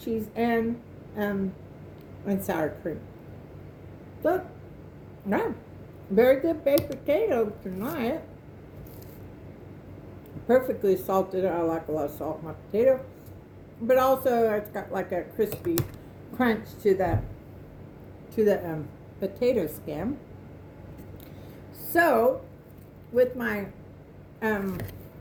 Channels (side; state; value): both; identical; correlation 1.00